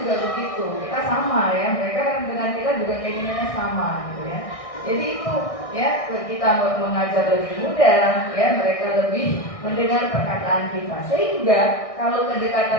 juga begitu. Kita sama ya, mereka dengan kita juga keinginannya sama, gitu ya. Jadi itu ya, kita mengajar lebih mudah ya, mereka lebih mendengar perkataan kita. Sehingga kalau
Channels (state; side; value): late; right; 1.6 ms